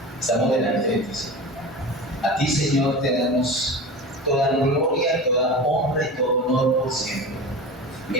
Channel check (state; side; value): normal; both; correlation 0.30